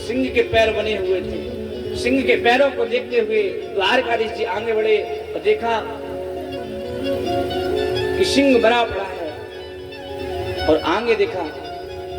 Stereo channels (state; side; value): identical; both; correlation 1.00